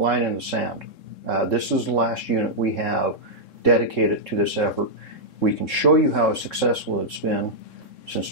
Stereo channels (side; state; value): right; late; 3.7 ms